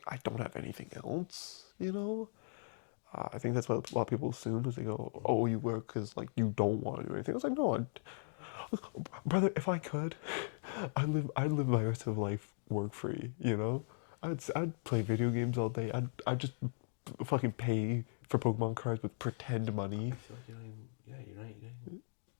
I don't have anything else. You know, I think that's what a lot of people assume is they go, oh, you work because like you don't want to do anything. I was like, no, brother, if I could, I'd live my rest of life work free. You know, I'd play video games all day. I'd just fucking pay for Pokemon cards with pretend money. I feel like you're not even.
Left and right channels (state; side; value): silent; right; digital silence